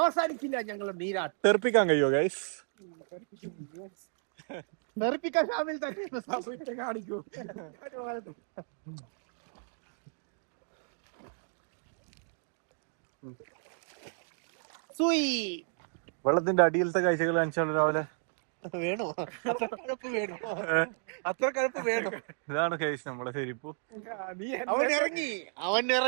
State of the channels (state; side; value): silent; left; 56 dB below the other